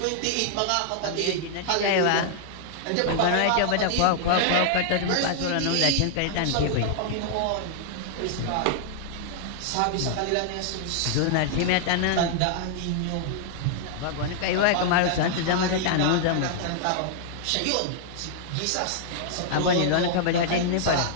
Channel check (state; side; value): different; both; correlation -0.01